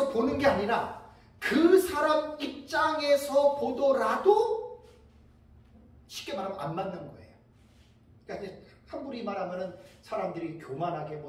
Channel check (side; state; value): both; identical; correlation 1.00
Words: 보는 게 아니라 그 사람 입장에서 보더라도 쉽게 말하면 안 맞는 거예요. 그러니까 함부로 말하면은 사람들이 교만하게